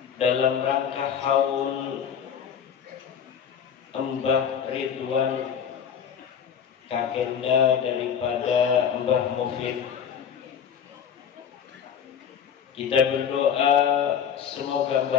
dalam rangka haul Mbah Ridwan, kakenda daripada Mbah Mufid. Kita berdoa semoga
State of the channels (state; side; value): quieter; right; 8.0 dB